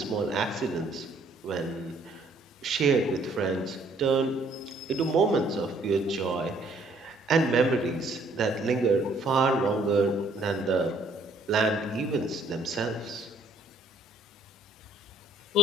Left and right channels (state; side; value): normal; both; correlation 0.63